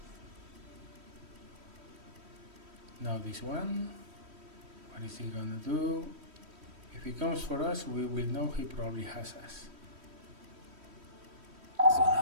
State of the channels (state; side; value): late; left; 3.1 ms